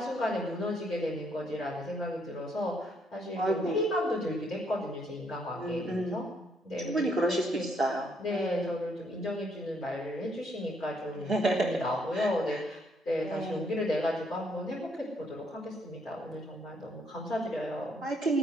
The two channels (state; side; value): normal; both; correlation 0.71